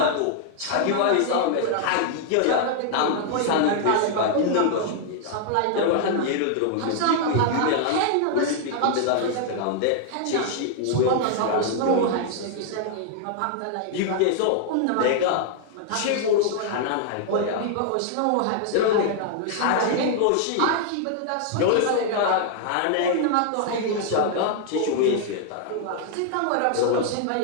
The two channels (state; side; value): different; both; correlation 0.00